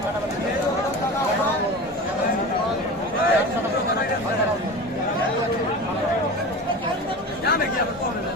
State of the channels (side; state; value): both; normal; correlation 0.31